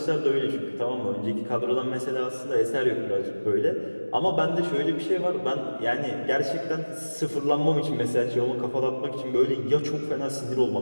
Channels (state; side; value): inverted; both; correlation -1.00